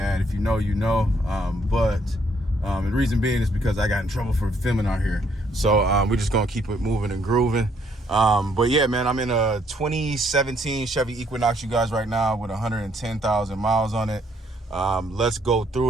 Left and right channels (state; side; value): normal; both; correlation 0.69